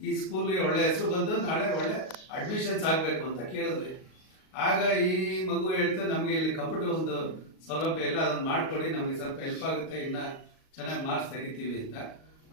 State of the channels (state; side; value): late; right; 38 ms